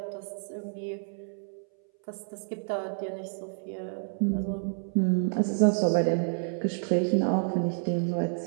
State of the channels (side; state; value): left; silent; 58 dB below the other